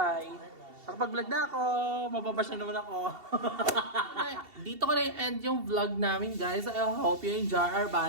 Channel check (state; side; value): late; left; 2.7 ms